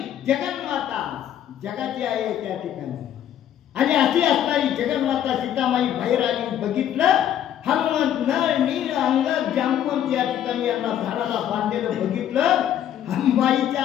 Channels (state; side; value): quieter; right; 10.5 dB